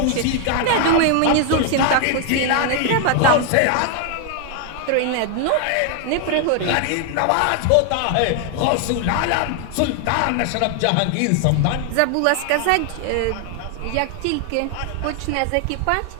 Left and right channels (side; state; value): both; different; correlation 0.00